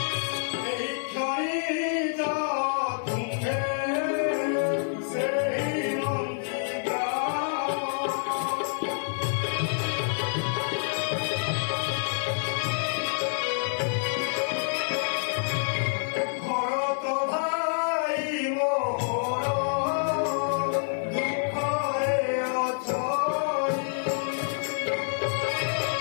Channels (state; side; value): silent; right; 59 dB below the other